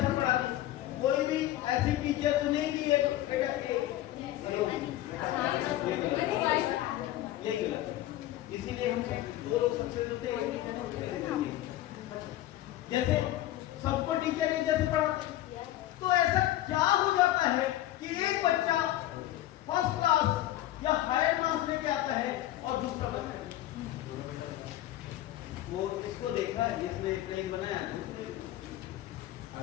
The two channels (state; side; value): quieter; right; 14.4 dB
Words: पढ़ाते हैं। कोई भी ऐसी टीचर तो नहीं कि ये गलत। इसीलिए हम 2 लोग सबसे मिलते हैं। जैसे सबको टीचर एक जैसे पढ़ाते हैं, तो ऐसा क्या हो जाता है कि एक बच्चा फर्स्ट क्लास या हायर मार्क्स लेके आता है और दूसरा बच्चा वो इसको देखा है, इसमें प्लेन बनाया है।